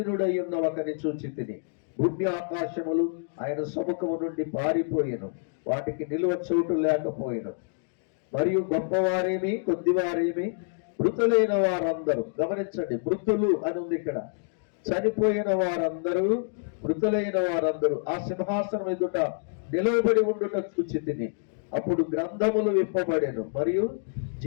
ఉన్న ఒకని చూచితిని. భూమి ఆకాశములు ఆయన సముఖము నుండి పారిపోయెను, వాటికి నిలువ చోటు లేకపోయెను. మరియు గొప్పవారేమి కొద్దివారేమి మృతులైన వారందరూ, గమనించండి, మృతులు అని ఉంది ఇక్కడ, చనిపోయిన వారందరూ, మృతులైన వారందరూ ఆ సింహాసనం ఎదుట నిలవబడి ఉండుట చూచితిని. అప్పుడు గ్రంథములు విప్పబడెను, మరియు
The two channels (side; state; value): right; silent; digital silence